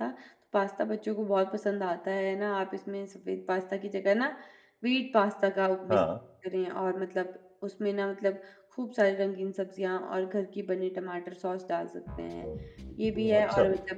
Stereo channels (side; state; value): both; identical; correlation 1.00